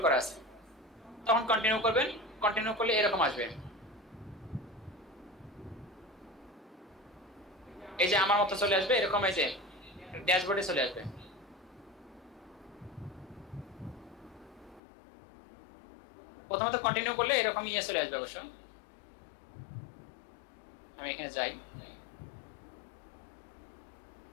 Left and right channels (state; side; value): drops out; right; at 14.8 s